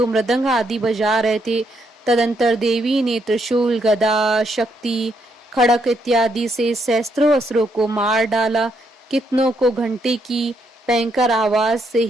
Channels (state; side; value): normal; both; correlation 0.75